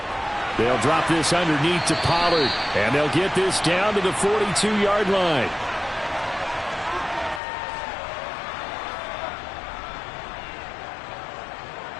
They'll drop this underneath to Pollard, and they'll get this down to the 42-yard line.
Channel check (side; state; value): right; drops out; at 7.4 s